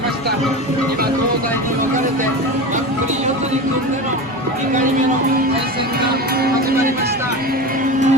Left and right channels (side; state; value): left; noise; hum, 24 dB below the sound